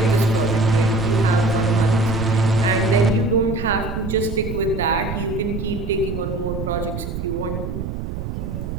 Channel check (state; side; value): noise; right; rumble, 5 dB below the sound